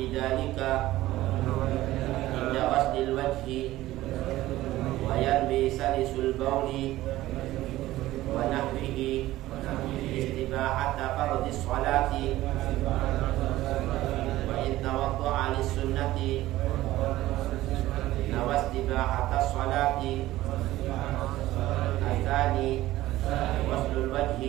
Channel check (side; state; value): left; quieter; 16.0 dB